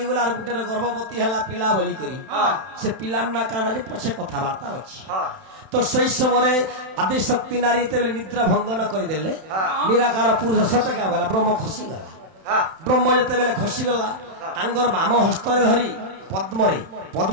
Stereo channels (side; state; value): left; late; 31 ms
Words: गला और गुटे गर्भवती हला पिला बोली करी से पिला ना काना जे पछे कथा वार्ता अछि तो सही समय आदि शक्ति नारी तेबे निद्रा भंगन कर देले निराकार पुरुष सते का बोला ब्रह्म खसी गला ब्रह्म जते बेले खसी गला तांगर बाम हस्त रे धरी पद्मरे